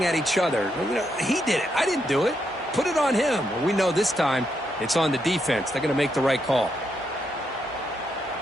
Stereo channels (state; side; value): normal; both; correlation 0.80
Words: at each other. You know, he did it. I didn't do it. Put it on him. Well, we know this time it's on the defense. They're going to make the right call.